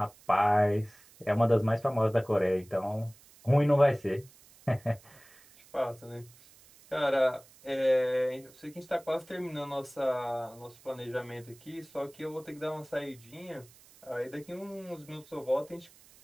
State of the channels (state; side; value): noise; right; hiss, 25 dB below the sound